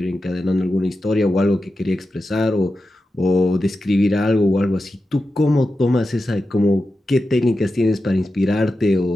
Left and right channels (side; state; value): both; normal; correlation 0.91